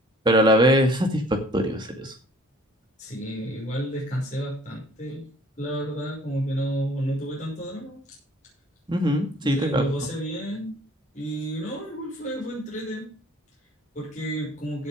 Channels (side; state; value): both; normal; correlation 0.54